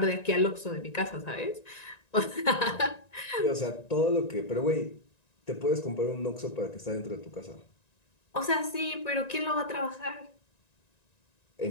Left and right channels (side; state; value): right; late; 1.9 ms